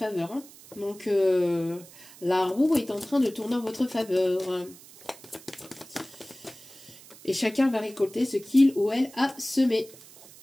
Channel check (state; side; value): noise; right; hiss, 21 dB below the sound